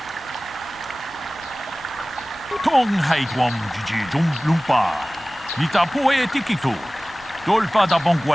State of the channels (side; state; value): both; normal; correlation 0.98